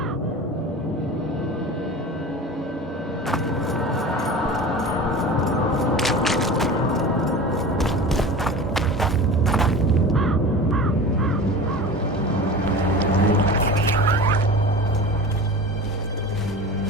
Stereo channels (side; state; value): both; normal; correlation 0.34